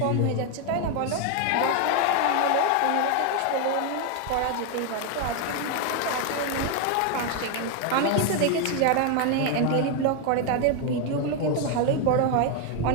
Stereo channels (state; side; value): different; both; correlation 0.01